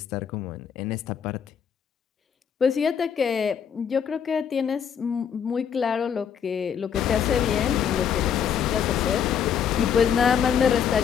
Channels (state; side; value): quieter; right; 7.9 dB